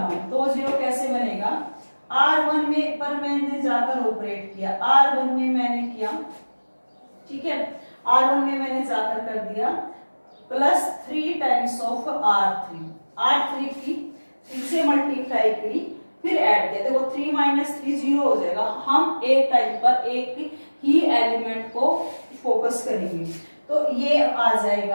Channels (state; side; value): inverted; both; correlation -1.00